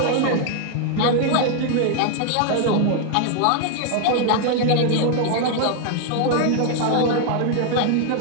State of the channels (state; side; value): different; both; correlation 0.00